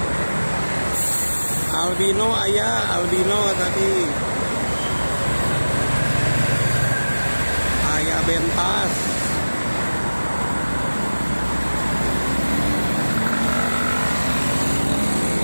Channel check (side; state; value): both; inverted; correlation -1.00